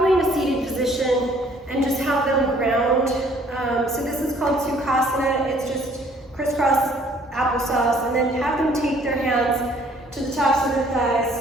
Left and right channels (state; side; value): normal; both; correlation 0.60